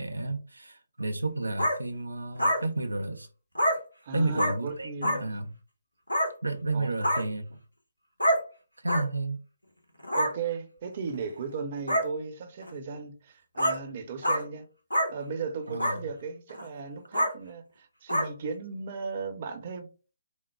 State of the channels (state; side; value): inverted; both; correlation -0.81